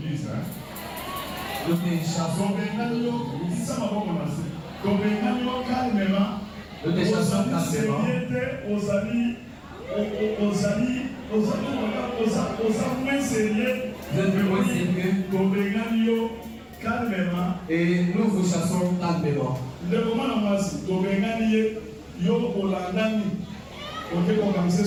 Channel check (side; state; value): both; identical; correlation 1.00